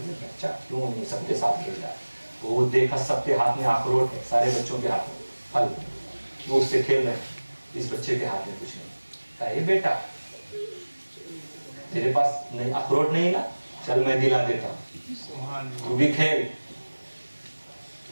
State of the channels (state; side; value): inverted; both; correlation -1.00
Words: बच्चा क्यों नहीं सबके साथ खेल रहा है? वो देखा सबके हाथ में अखरोट है, सारे बच्चों के हाथ में फल, वो उससे खेल रहे हैं। इस बच्चे के हाथ में कुछ नहीं। कहा, ये बेटा तेरे पास नहीं अखरोट नहीं ना, चल मैं दिला देता हूँ, तू भी खेल।